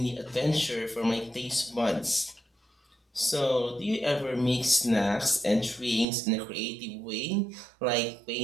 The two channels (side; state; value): left; drops out; at 6.1 s